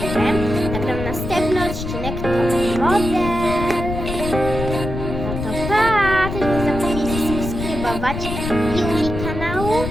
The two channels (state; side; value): noise; left; rumble, 5 dB below the sound